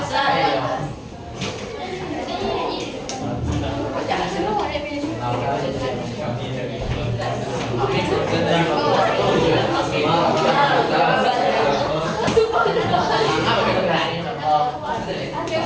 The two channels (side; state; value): both; identical; correlation 1.00